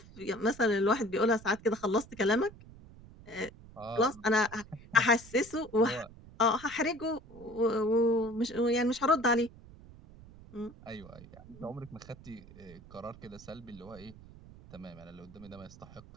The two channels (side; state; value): right; noise; rumble, 19 dB below the sound